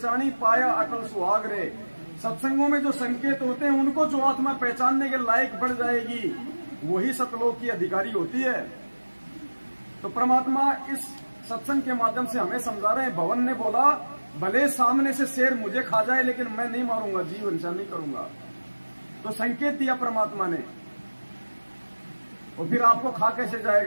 पाया अटल सुहाग रे। सत्संगों में जो संकेत होते हैं उनको जो आत्मा पहचानने के लायक बढ़ जाएगी, वही सतलोक की अधिकारी होती है। तो परमात्मा इस सत्संग के माध्यम से हमें समझा रहे हैं। भवन ने बोला भले सामने से शेर मुझे खा जाए, लेकिन मैं नहीं मारूंगा, जीव हिंसा नहीं करूंगा। तो संकेत दिया परमात्मा ने। और फिर आपको खा कैसे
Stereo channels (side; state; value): both; inverted; correlation -1.00